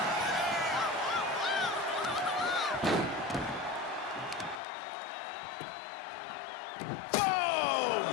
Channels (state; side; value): drops out; right; at 4.6 s